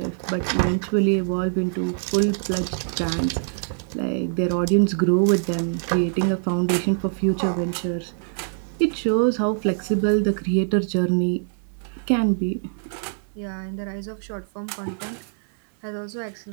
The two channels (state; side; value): silent; left; digital silence